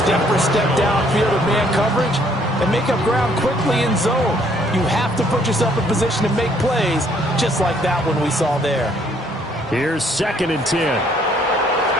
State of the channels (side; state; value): both; normal; correlation 0.65